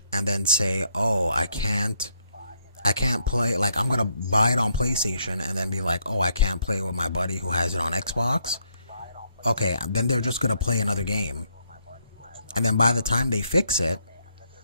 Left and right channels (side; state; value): both; inverted; correlation -0.73